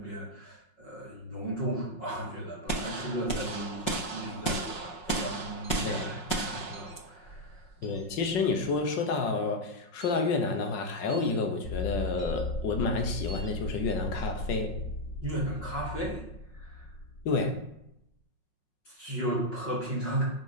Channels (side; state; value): right; late; 5.5 ms